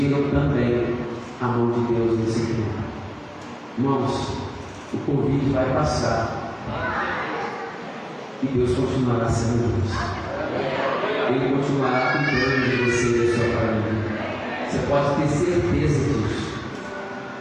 também a mão de Deus nesse tempo. Irmãos, o Covid vai passar. e Deus continuará sendo Deus. Ele continuará cuidando de você e da sua família. Você pode ter certeza disso.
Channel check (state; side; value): identical; both; correlation 1.00